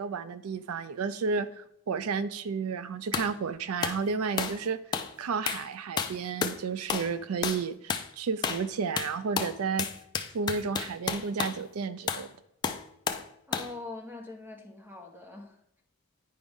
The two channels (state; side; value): normal; both; correlation 0.03